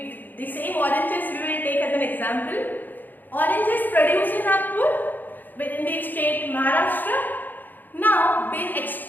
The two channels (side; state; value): right; late; 0.087 ms